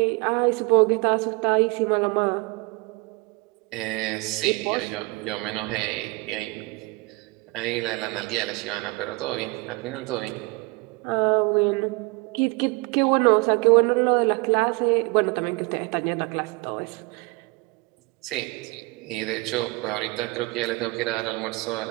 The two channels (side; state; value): left; quieter; 25.5 dB